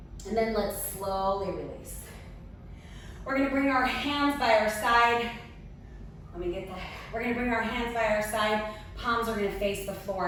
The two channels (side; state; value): both; identical; correlation 1.00